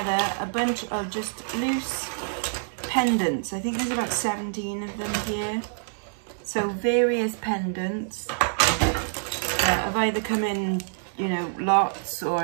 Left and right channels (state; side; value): silent; left; digital silence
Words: a bunch of just loose pendants. I think there's about 17 of them here. So various pendants have either come in, you know, lots, or